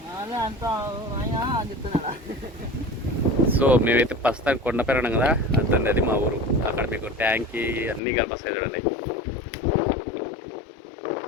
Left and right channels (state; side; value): drops out; right; at 8.0 s